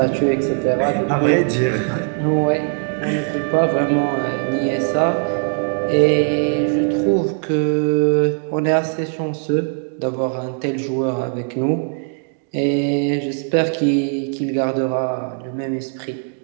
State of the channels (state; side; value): silent; left; 56 dB below the other